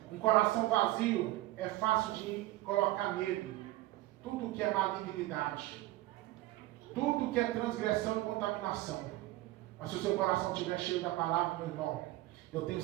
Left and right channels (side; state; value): left; quieter; 17.3 dB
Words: Um coração vazio é fácil de colocar nele tudo que é malignidade, tudo que é transgressão e contaminação. Mas se o seu coração estiver cheio da palavra, meu irmão, eu tenho